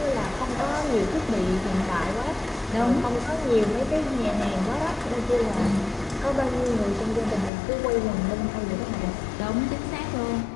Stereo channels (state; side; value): drops out; right; at 7.5 s